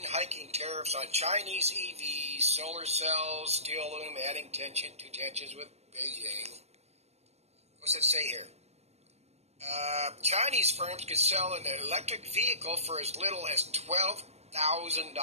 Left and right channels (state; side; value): late; left; 0.31 ms